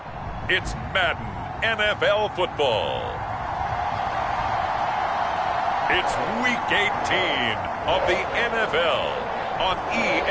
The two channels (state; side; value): identical; both; correlation 1.00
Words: it's Madden NFL football. It's Week 18 of the NFL on